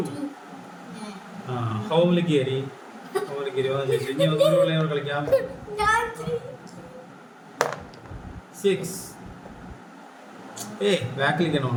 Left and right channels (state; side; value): identical; both; correlation 1.00